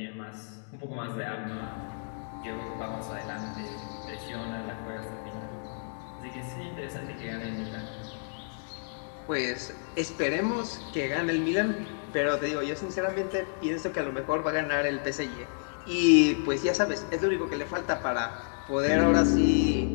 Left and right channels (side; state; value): right; silent; digital silence